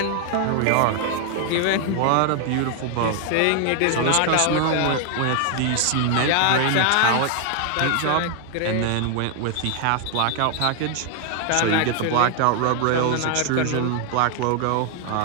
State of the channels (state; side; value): different; both; correlation 0.00